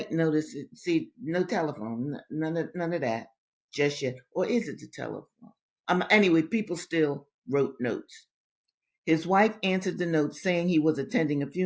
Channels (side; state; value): both; identical; correlation 1.00